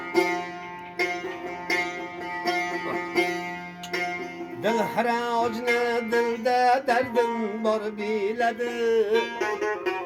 Dil haracını dilde derdin var biledi.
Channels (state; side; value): identical; both; correlation 1.00